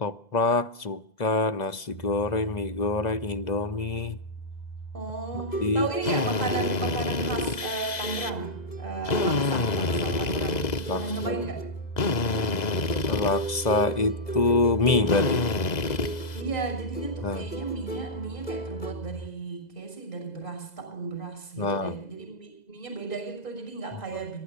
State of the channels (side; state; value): right; late; 2.0 ms